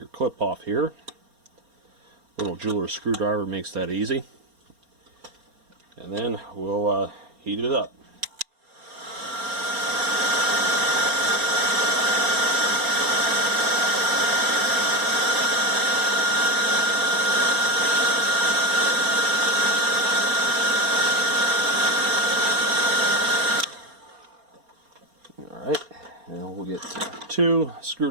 clip off here. Little jeweler's screwdriver makes that easy. And then we'll heat it up. 2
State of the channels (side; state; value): left; late; 4.3 ms